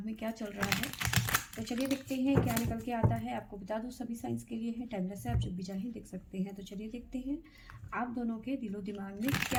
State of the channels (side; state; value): both; identical; correlation 1.00